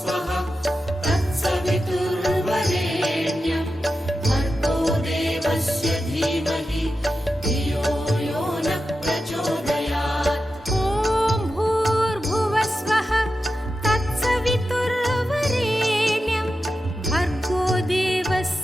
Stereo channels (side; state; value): both; normal; correlation 0.91